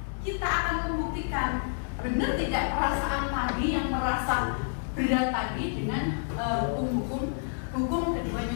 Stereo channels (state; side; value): silent; right; digital silence